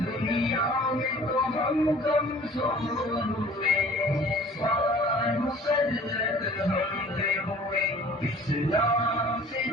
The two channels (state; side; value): normal; both; correlation 0.49